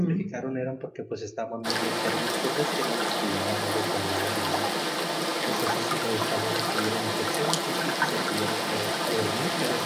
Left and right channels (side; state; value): both; identical; correlation 1.00